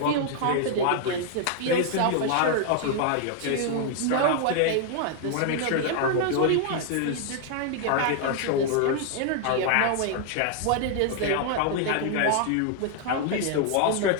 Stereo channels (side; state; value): both; different; correlation 0.00